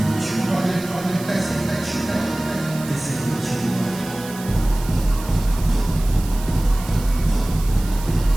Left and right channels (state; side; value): noise; right; hiss, 15 dB below the sound